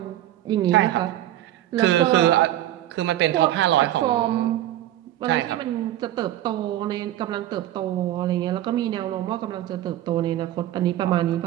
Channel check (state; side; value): quieter; left; 13.4 dB